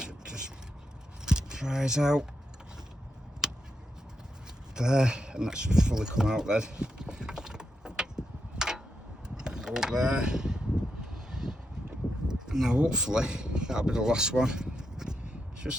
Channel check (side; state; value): both; normal; correlation 0.84